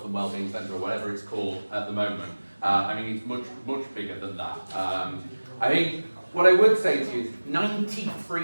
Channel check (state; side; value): inverted; both; correlation -1.00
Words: and wellbeing centre or whatever it's called at the moment. I mean, it's much bigger than that. I think what I would say to you is